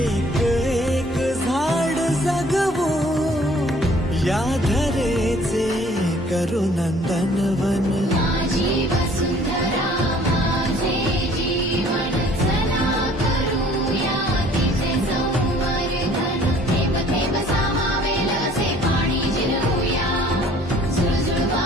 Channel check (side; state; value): both; normal; correlation 0.55